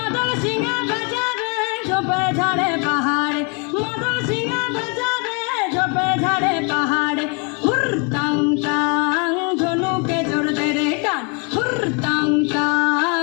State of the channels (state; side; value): quieter; right; 34.0 dB